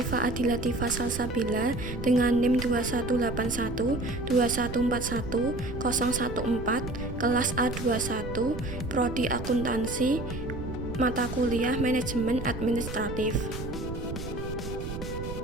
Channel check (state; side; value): noise; right; rumble, 7 dB below the sound